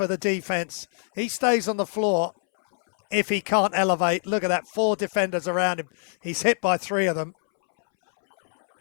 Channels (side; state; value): right; silent; 62 dB below the other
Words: the defense. He stays on the floor if he can't elevate. Look at that, 4 defenders around him. He's hit by 3 of them.